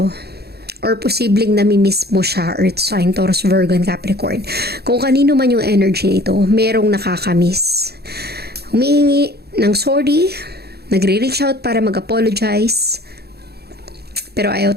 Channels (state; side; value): late; left; 0.47 ms